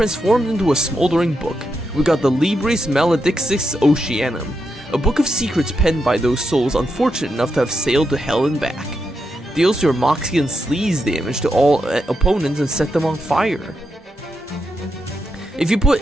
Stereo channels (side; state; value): both; normal; correlation 0.84